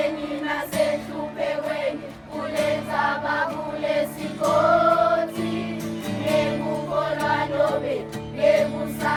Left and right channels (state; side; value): identical; both; correlation 1.00